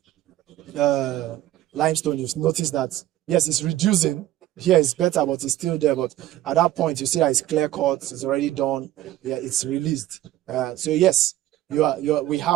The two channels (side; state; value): left; quieter; 14.2 dB